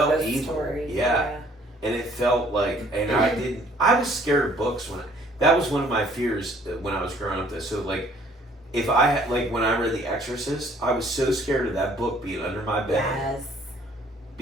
story. Yeah. And it felt like, and I was scared of books that was one of my fears when I was growing up. So, like, if I had, like, when I read The Exorcist, I was so scared of that book being under my bed. Yes.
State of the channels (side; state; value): both; normal; correlation 0.59